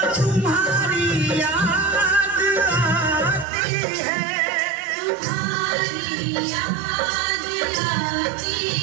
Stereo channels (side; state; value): left; drops out; at 3.5 s